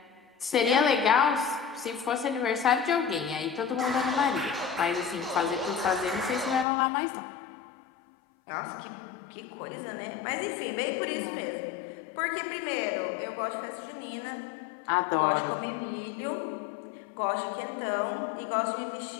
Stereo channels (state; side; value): drops out; right; at 6.7 s